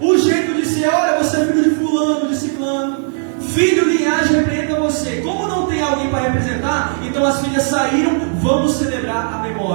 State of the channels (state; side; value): silent; left; digital silence